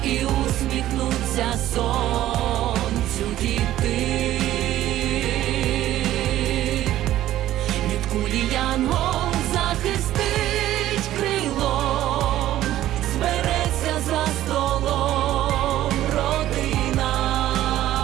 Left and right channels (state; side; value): quieter; left; 13.6 dB